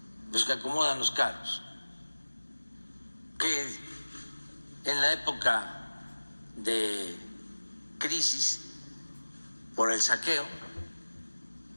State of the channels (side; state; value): both; inverted; correlation -1.00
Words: los que acomodan los carros, que en la época de crisis por el saqueo